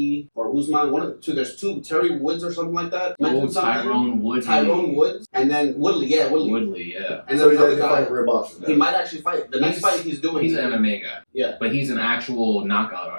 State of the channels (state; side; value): inverted; both; correlation -1.00